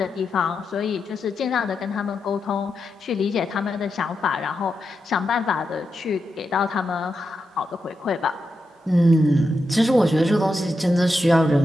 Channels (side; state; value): both; normal; correlation 0.87